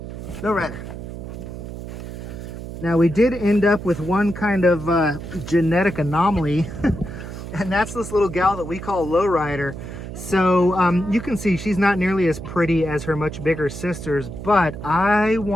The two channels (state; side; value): noise; right; hum, 10 dB below the sound